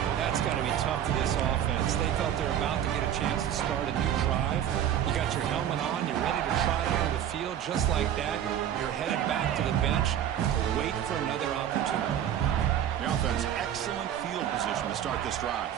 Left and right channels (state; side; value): quieter; left; 10.2 dB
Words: That's got to be tough for this offense. They thought they were about to get a chance to start a new drive. You got your helmet on. You're ready to trot out of the field. Just like that, you're headed back to the bench to wait for another opportunity. The offense, excellent field position to start this drive.